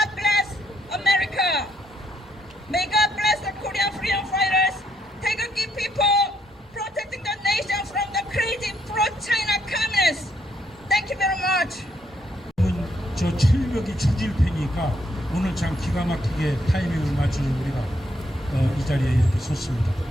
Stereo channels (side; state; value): both; normal; correlation 0.73